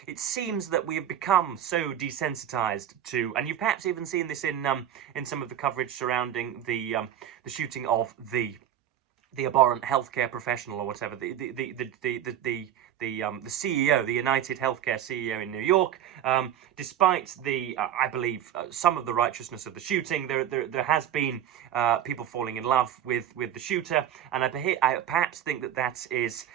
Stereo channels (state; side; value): quieter; left; 10.6 dB